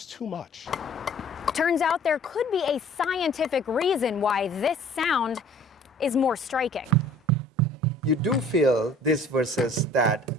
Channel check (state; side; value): normal; both; correlation 0.51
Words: too much. Turns out there could be a scientific reason why this sound is more striking. You do feel this versus that